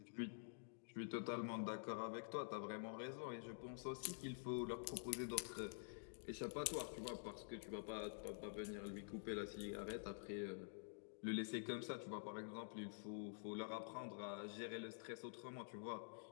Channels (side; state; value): right; silent; digital silence